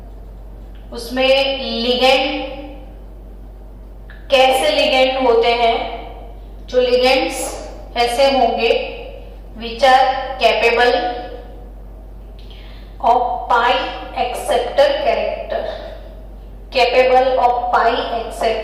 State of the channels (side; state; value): both; identical; correlation 1.00